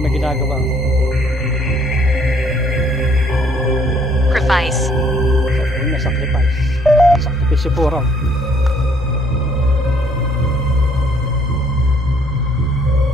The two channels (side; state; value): both; normal; correlation 0.63